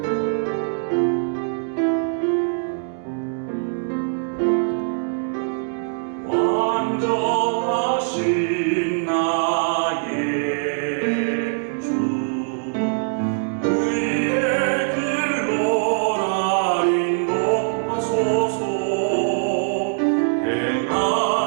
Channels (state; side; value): silent; left; digital silence